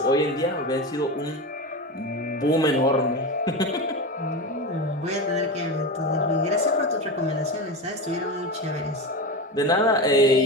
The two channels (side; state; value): both; normal; correlation 0.22